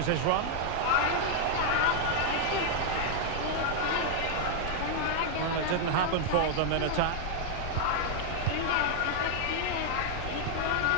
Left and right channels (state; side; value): different; both; correlation 0.00